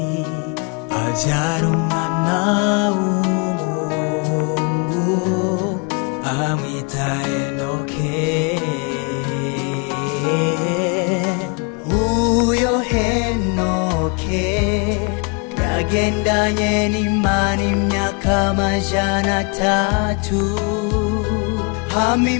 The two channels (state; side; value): quieter; right; 33.6 dB